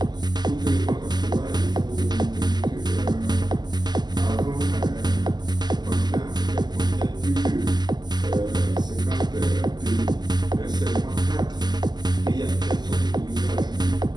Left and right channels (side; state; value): left; late; 0.21 ms